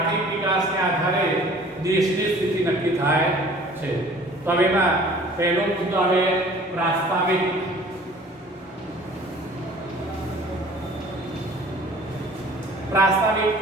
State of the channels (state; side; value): normal; both; correlation 0.49